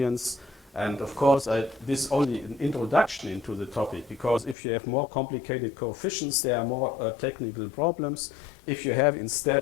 And of course, this is only an introduction into the topic, because if you have more complicated coefficients, there are more technical problems. If you have,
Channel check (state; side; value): drops out; right; at 4.5 s